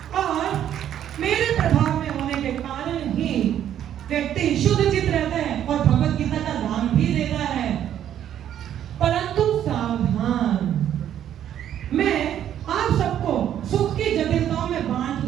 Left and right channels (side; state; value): left; quieter; 10.5 dB